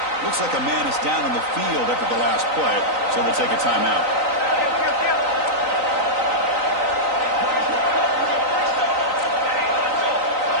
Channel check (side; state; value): left; late; 3.9 ms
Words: Looks like a man is down on the field after the last play, so they'll take a timeout.